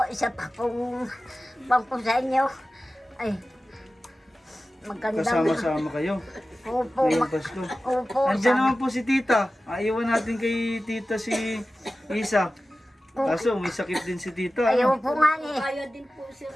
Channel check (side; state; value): both; normal; correlation 0.95